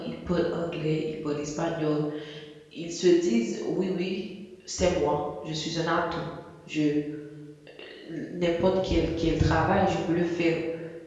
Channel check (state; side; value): identical; both; correlation 1.00